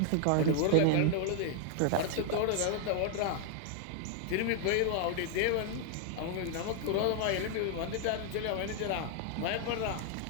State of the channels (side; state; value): both; different; correlation 0.00